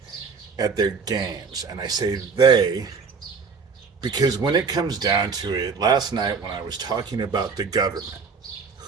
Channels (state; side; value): quieter; left; 5.3 dB